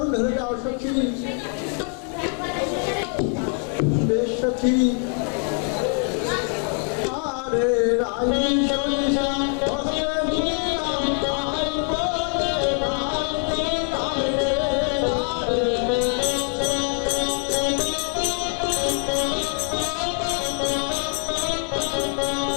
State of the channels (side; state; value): right; quieter; 39.6 dB